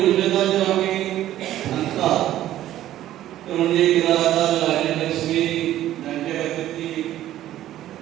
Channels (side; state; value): left; quieter; 13.1 dB